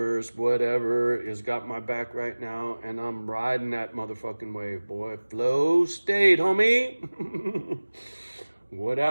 whatever, has got my back right now, and I'm riding that motherfucking wave, boy. Flow state, homie.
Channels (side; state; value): both; inverted; correlation -1.00